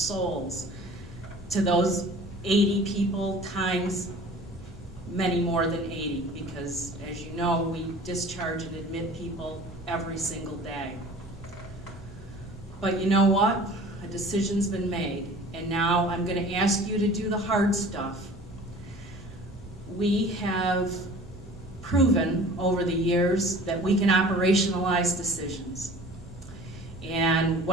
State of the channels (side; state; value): both; normal; correlation 0.45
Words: to those 80 people times many more than 80, because as you know, we discharge and admit people every single day. But you know what? A decision's been made, and now I'm going to ask you to do the hard stuff. We have proven over the years that we can operationalize decisions. And